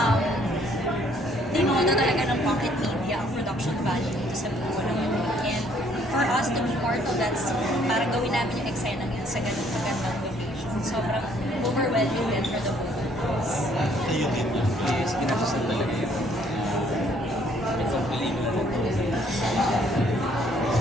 tinodo talaga ng Pocket Media ang production value dito sa buo naman. And for us to be part of that scene, parang gawin namin yung eksena yan sa ganun kagandang location. Sobrang overwhelming din for the both of us. Kayo din yun. Yes, kinasasal talaga yun. Itong pelikula na ito.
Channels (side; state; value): both; normal; correlation 0.64